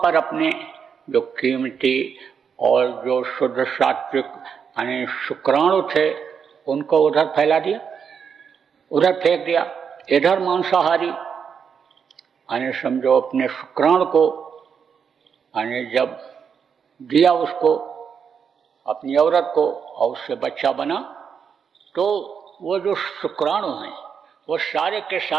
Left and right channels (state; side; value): quieter; left; 6.8 dB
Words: पर अपने जो कीमती और जो शुद्ध सात्विक यानी शुक्राणु थे उनको उधर फैला दिया, उधर फेंक दिया। इधर मांसाहारी यानी समझो अपने शुक्राणु को यानी जब दिया उसको, अपनी औरत को, और उससे बच्चा बना, तो वो जो शुक्राणु हैं वो सारे के